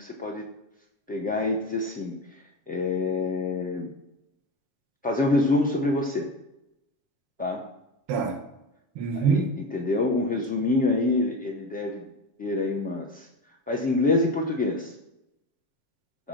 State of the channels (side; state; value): left; late; 7.3 ms